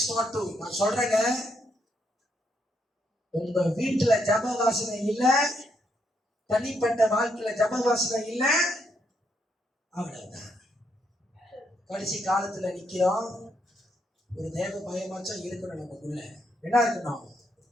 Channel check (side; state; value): both; normal; correlation 0.77